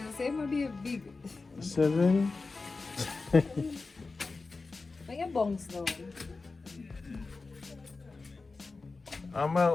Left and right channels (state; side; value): quieter; right; 3.9 dB